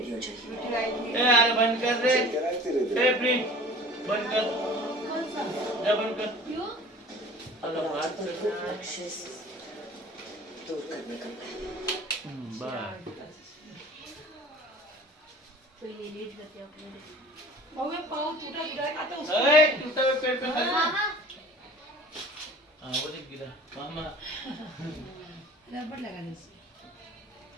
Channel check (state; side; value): normal; both; correlation 0.44